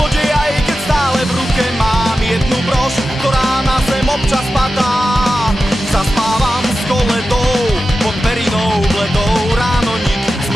aj keď stále v ruke mám jednu brož, ktorá na zem občas padá. Zaspávam s koledou pod perinou bledou, ráno nik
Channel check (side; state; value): both; normal; correlation 0.92